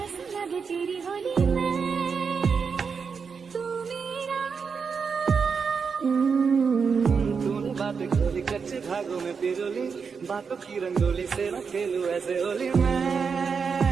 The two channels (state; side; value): quieter; left; 5.7 dB